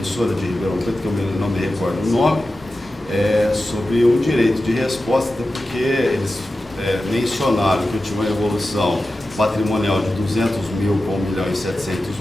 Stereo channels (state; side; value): normal; both; correlation 0.93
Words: de Ribeirão Preto, que eu não me recordo o nome, sobre um direito de resposta, até porque eles mencionaram que eu tinha uma evolução patrimonial de 200 mil para